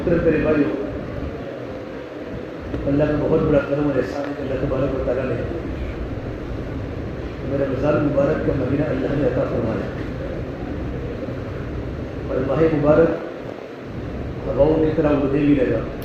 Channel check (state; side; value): identical; both; correlation 1.00